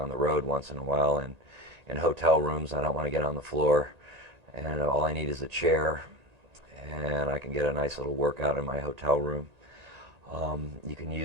the road once in a while, and in hotel rooms, I don't want to get on the floor, and all I need is a chair, and I can get a nice little workout in my hotel room. You can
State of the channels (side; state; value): left; late; 1.9 ms